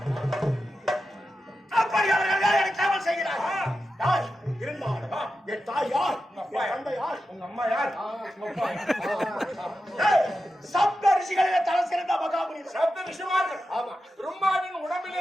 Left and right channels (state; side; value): normal; both; correlation 0.90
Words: என் தாய் யார்? தந்தை யார்? உங்க அம்மா யார்? சப்த ரிஷிகளிலே தலை சிறந்த மகாமுனி சப்த ரிஷிமார்கள். ஆமா, பிரம்மாவின்